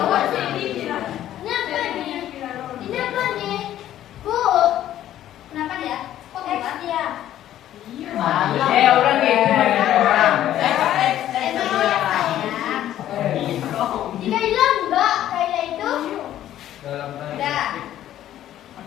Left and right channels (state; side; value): quieter; right; 12.3 dB